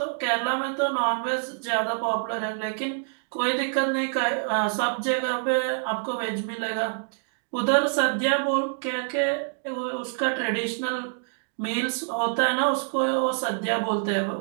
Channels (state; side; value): silent; left; digital silence